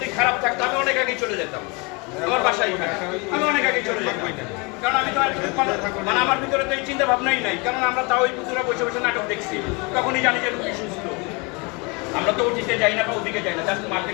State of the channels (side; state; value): right; quieter; 29.2 dB